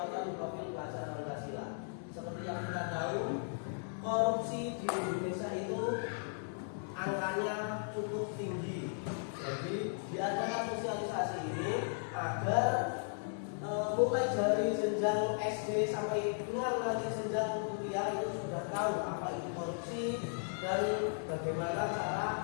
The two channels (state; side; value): silent; right; 54 dB below the other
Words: profil pelajar Pancasila. Seperti yang kita tahu, korupsi di Indonesia itu angkanya cukup tinggi. Jadi diadakan sosialisasi ini agar mulai dari jenjang SD sampai dengan nanti jenjang kuliah itu sudah tahu apa itu korupsi dan bagaimana cara